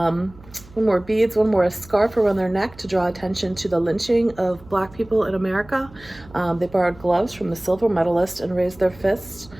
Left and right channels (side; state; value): right; noise; hum, 23 dB below the sound